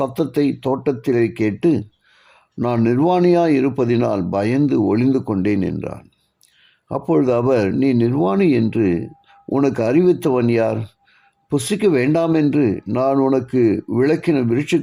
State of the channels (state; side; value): identical; both; correlation 1.00